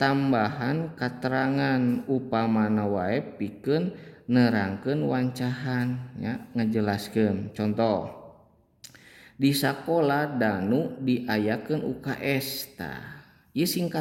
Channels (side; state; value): both; identical; correlation 1.00